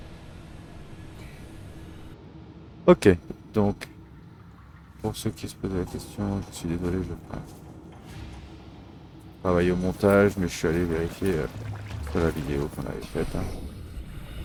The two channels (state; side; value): identical; both; correlation 1.00